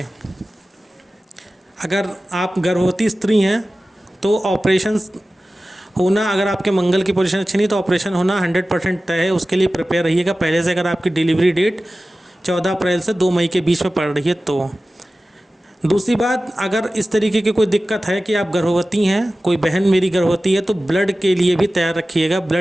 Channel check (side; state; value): both; normal; correlation 0.95